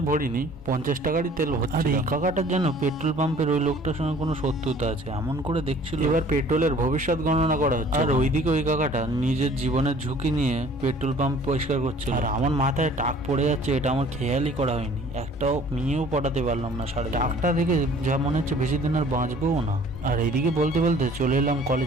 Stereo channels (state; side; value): normal; both; correlation 0.52